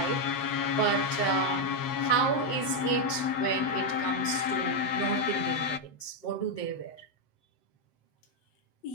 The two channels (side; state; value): right; late; 7.6 ms